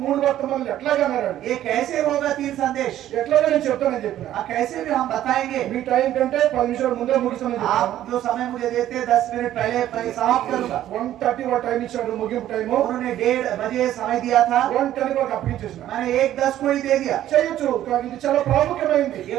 3 వర్తమానాలు ఎట్లాగా అన్నారు? ये कैसे होगा 3 संदेश? ఎట్లాగా నేను చెప్తానని చెప్పిన. कैसे भी हम बताएंगे? మీ టైం కంటే 10 నిమిషాలు ముందే ముగిస్తానని చెప్పాను. आप जो समय मुझे देते 10 मिनट पहले मैं समाप्त करूंगा। 1:30 వాడు టైం ఇచ్చాడు ముగింపు టైము. उन्होंने 1:30 बजे समय दिया था, 1:10 వరకు అప్పగించేసిన. मैंने 1:10 को ही दे दिया। చేయొచ్చు కానీ ఇది చాలా ప్రాముఖ్యమైనది. ये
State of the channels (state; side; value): quieter; left; 12.5 dB